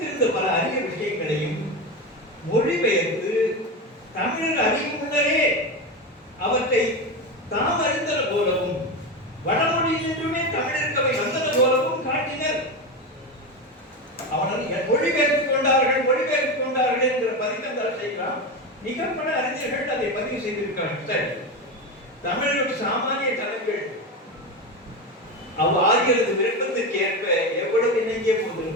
பல அரிய விஷயங்களையும் மொழிபெயர்த்து தமிழர் அறியும் முன்னரே அவற்றை தாம் அறிந்தன போலவும் வடமொழியிலிருந்துமே தமிழருக்கு அவை வந்தன போலவும் காட்டினர். அவர்கள் மொழிபெயர்த்துக் கொண்டார்கள் என்ற பதிக்கந்தால் செய்கிறான். மிக பல அறிஞர்கள் அதை பதிவு செய்திருக்கிறார்கள். தமிழர்கள் சாமானிய தலைகள் ஆகியது விருப்பத்திற்கு ஏற்ப எவ்வளவு இணங்கிய போது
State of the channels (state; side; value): normal; both; correlation 0.18